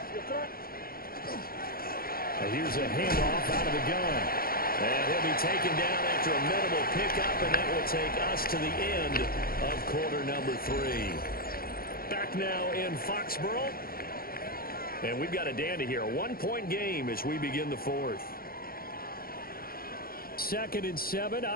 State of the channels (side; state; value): right; late; 0.43 ms